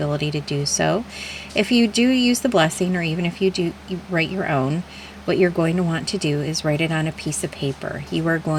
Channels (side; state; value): both; identical; correlation 1.00